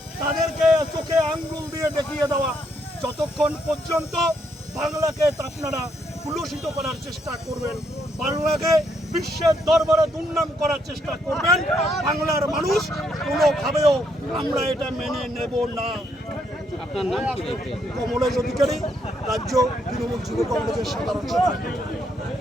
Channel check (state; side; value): normal; both; correlation 0.75